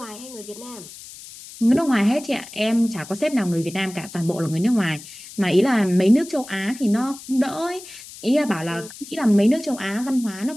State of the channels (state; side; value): noise; left; hiss, 16 dB below the sound